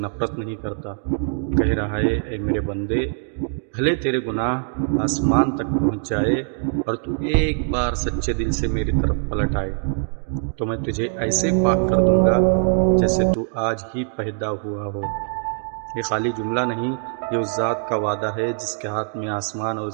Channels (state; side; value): silent; left; 64 dB below the other